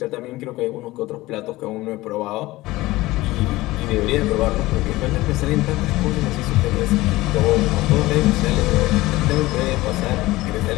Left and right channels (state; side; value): quieter; right; 18.8 dB